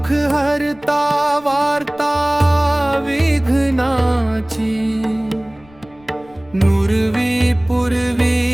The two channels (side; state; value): left; noise; rumble, 27 dB below the sound